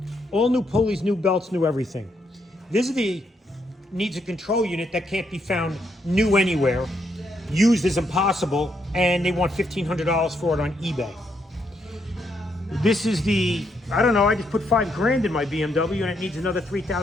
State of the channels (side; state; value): both; normal; correlation 0.77